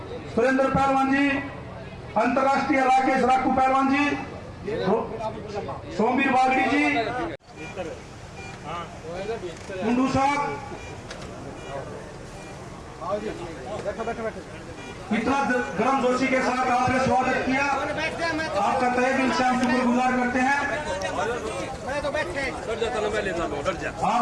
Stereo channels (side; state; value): both; identical; correlation 1.00